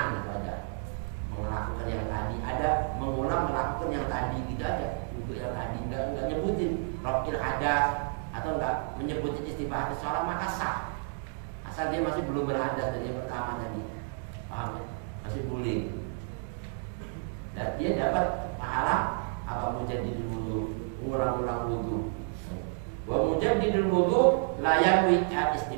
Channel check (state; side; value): silent; left; 57 dB below the other